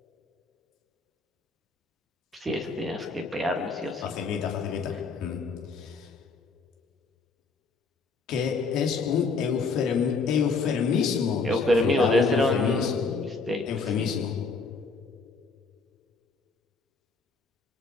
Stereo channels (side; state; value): right; quieter; 4.1 dB